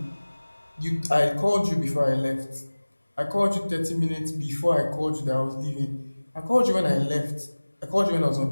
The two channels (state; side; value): inverted; both; correlation -1.00